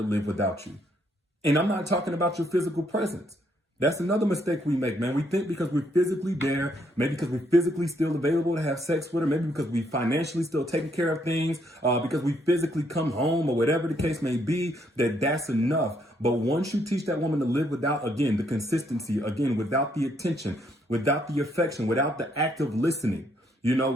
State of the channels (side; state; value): both; normal; correlation 0.72